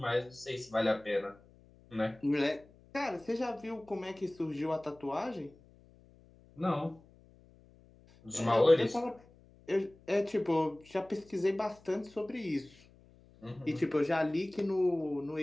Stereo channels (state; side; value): noise; left; hum, 26 dB below the sound